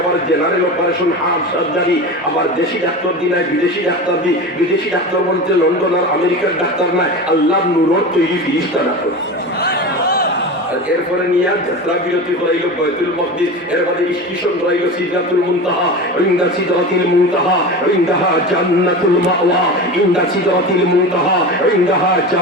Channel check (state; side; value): normal; both; correlation 0.28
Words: আবার জেনারেল অপারেশন, হার্ট সার্জারি, আবার দেশি ডাক্তার দি নাই, বিদেশি ডাক্তার দি। বিদেশি ডাক্তার বলতে লন্ডন আর আমেরিকার ডাক্তার নাই, আল্লাহ নূরত তৈরি ফিরিস্তা ডাক্তার। এরপরে নিয়ে যাত্রা বিরতি করাইল বাইতুল মাকদিস, এর বাদে স্টেশন করাইল সিদরাতুল মুনতাহা, ইনদা সিদরাতিল মুনতাহা ইনদাহা জান্নাতুল মাওয়া, ইনদা সিদরাতিল মুনতাহা ইনদাহা